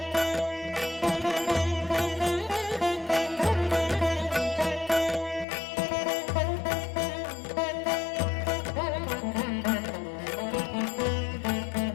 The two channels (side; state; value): right; drops out; at 5.5 s